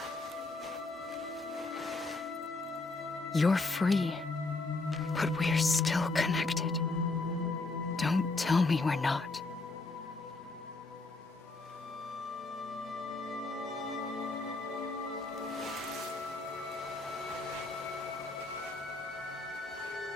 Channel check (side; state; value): right; quieter; 3.3 dB